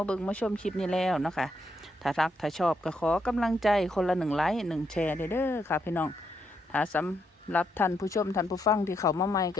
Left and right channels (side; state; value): both; normal; correlation 0.78